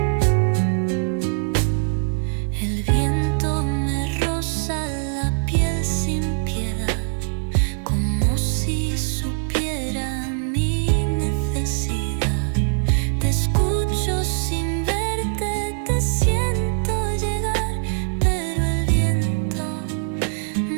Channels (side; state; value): left; silent; digital silence